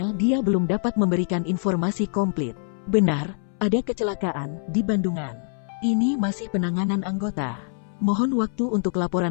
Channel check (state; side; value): silent; right; 62 dB below the other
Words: dia belum dapat memberikan informasi komplit. Benar, ada kecelakaan di Bandungan. Ini masih penanganan anggota. Mohon waktu untuk